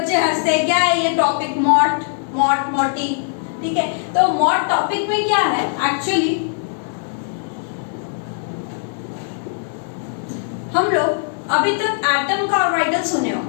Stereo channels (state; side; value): silent; right; 66 dB below the other